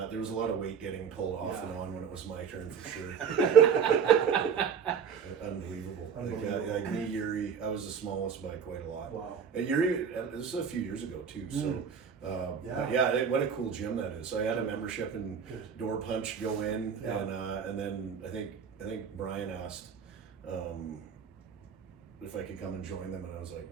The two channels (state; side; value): quieter; left; 7.0 dB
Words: There was a lot of weight getting pulled off Yeah. and on when it was my turn for sure. Unbelievable. Unbelievable. Like me, Yuri, I was the smallest by quite a lot. Wow. And Yuri, this is a few years ago too. So, Yeah. but yeah, what a cool gym that is. So I had a membership and Good. door punch, go in, Yeah. and then I think Brian asked if I could come and join them, and I was like,